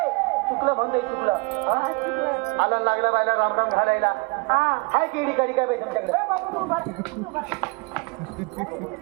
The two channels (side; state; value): left; quieter; 28.9 dB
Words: चुकलं म्हणतोय चुकलं. हा? आला लागला बाईला राम राम घालायला. हाय केडी काडी काय बाई तुमच्याकडे?